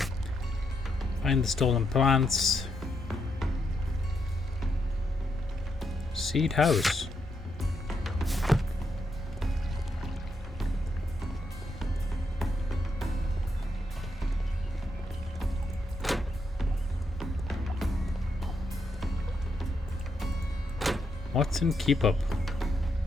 Find the stolen plants. Seed house. Watson, keep up.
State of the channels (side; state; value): both; normal; correlation 0.80